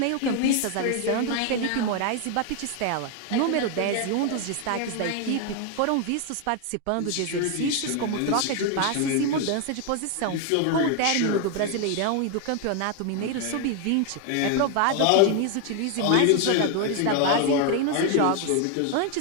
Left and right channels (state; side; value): different; both; correlation 0.01